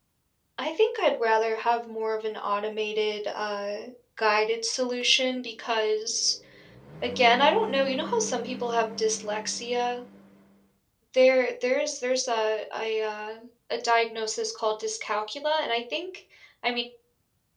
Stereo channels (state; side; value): identical; both; correlation 1.00